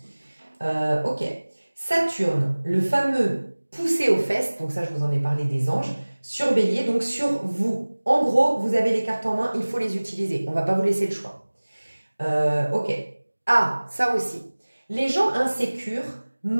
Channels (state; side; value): inverted; both; correlation -1.00